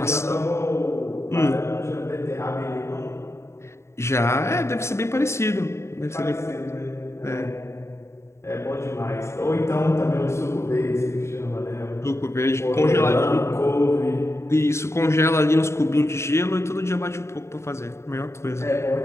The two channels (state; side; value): late; right; 0.13 ms